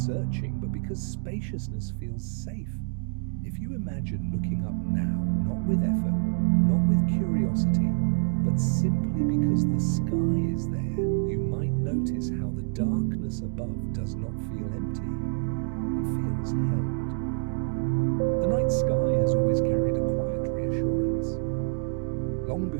searching, but because spaciousness feels safe. If you imagine looking up now, not with effort, not with curiosity, but simply because the sky is there, you might notice how the darkness above does not feel empty. It feels held. The night sky has always carried a quiet reassurance. Long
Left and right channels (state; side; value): silent; left; digital silence